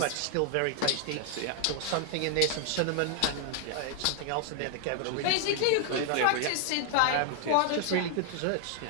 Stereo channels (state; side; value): different; both; correlation 0.00